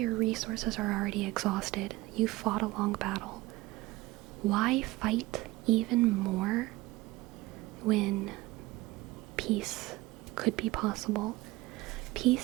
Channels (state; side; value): quieter; left; 19.3 dB